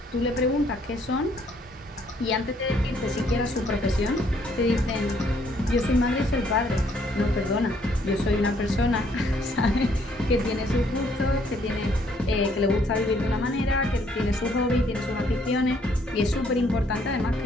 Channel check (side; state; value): both; normal; correlation 0.66